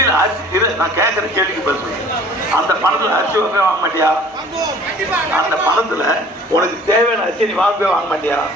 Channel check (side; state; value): both; normal; correlation 0.50